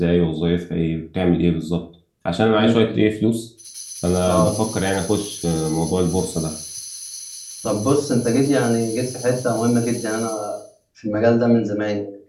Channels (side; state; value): both; identical; correlation 1.00